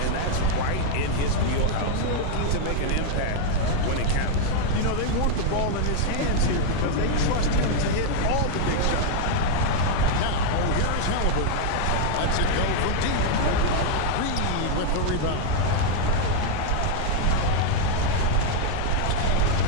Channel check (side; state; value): both; different; correlation 0.00